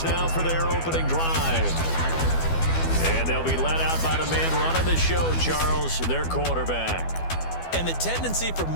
now for their opening drive. And they'll be led out by the man running the show, Charles, their quarterback. And the tendency for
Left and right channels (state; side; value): late; right; 12 ms